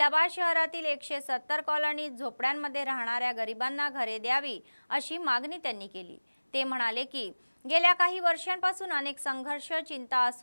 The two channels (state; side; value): inverted; both; correlation -1.00